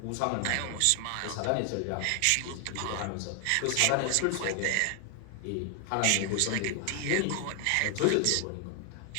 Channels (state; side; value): different; both; correlation 0.00